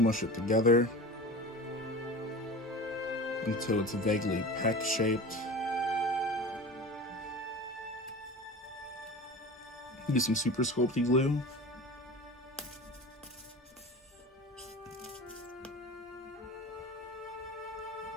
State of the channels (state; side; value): normal; both; correlation 0.34